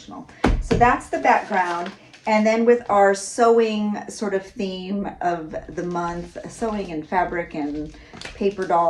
So that's the background. And then with our sewing sort of theme of the month, sewing and fabric and paper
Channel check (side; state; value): both; identical; correlation 1.00